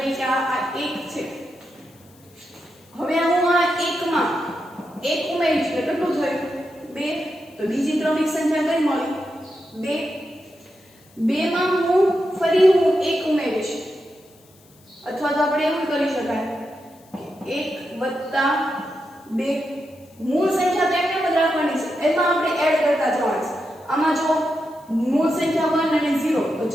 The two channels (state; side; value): noise; left; hiss, 29 dB below the sound